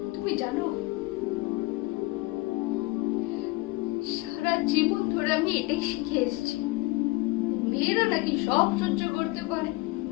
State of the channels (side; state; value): right; quieter; 22.4 dB